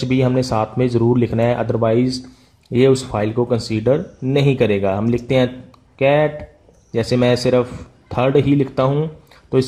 भी हमने साथ में ज़रूर लिखना है, अदरवाइज़ ये उस फाइल को कंसीडर नहीं करेगा। हम लिखते हैं कैट, जैसे मैं सिर्फ थर्ड ही लिखता हूँ तो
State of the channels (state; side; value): identical; both; correlation 1.00